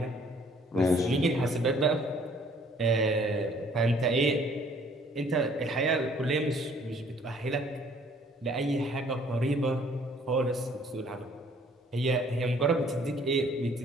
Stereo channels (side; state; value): both; normal; correlation 0.59